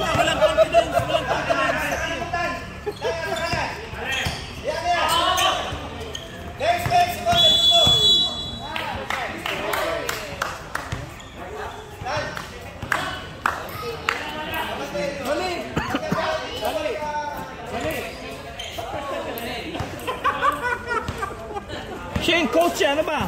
confidence, walang confidence. Siya yung coach, ano ba?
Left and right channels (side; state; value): both; identical; correlation 1.00